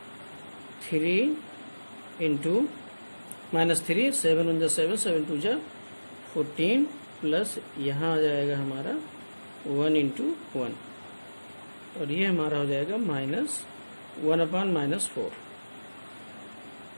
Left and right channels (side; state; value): both; inverted; correlation -1.00